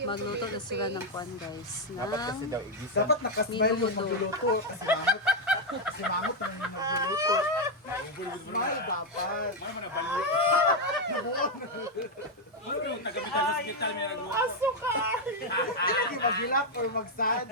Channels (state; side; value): normal; both; correlation 0.02